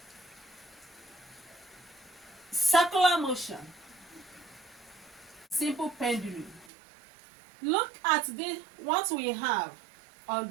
circular motion, simple pendulum. Look at what we have on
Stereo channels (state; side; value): drops out; left; at 6.7 s